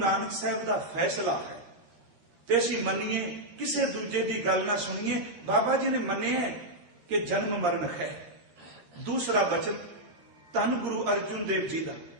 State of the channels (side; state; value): left; late; 13 ms